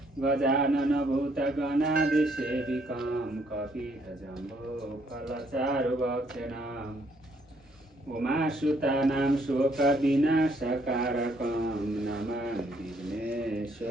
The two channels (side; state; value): both; normal; correlation 0.69